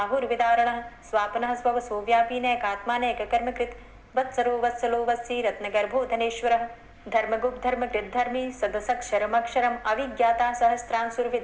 स्वापनः स्ववसो व्यापी नैकात्मा नैककर्मकृत् वत्सरो वत्सलो वत्सी रत्नगर्भो धनेश्वरः धर्मगुप्त धर्मकृद्धर्मी सदसक्षरमक्षरम् अविज्ञाता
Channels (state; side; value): identical; both; correlation 1.00